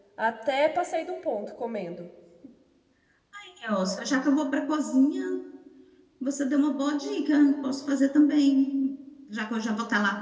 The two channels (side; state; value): both; identical; correlation 1.00